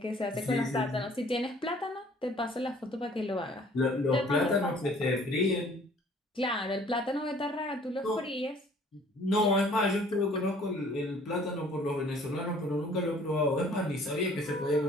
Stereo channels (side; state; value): both; normal; correlation 0.55